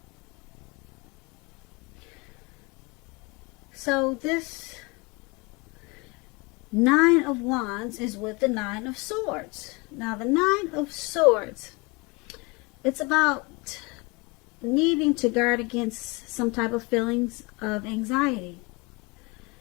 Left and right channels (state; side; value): quieter; right; 26.7 dB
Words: So this Nine of Wands is with the Nine of Swords. Now the Nine of Swords, it's about needing to guard against some type of feelings of anxiety.